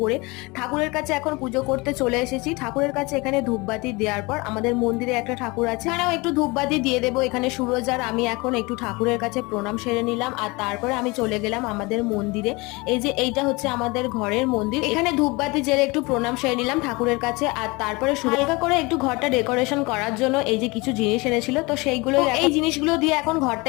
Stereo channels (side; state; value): right; quieter; 25.2 dB